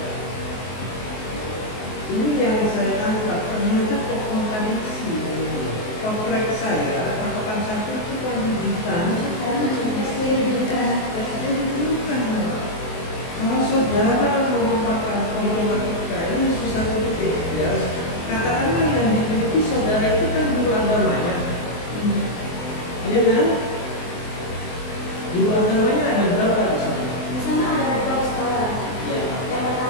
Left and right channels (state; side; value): late; right; 23 ms